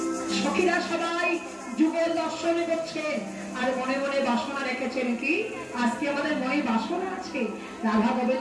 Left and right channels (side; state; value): both; identical; correlation 1.00